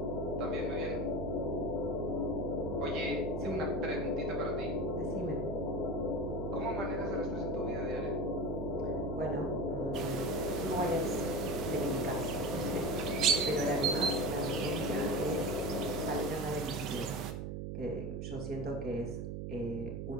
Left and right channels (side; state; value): right; noise; hum, 4 dB below the sound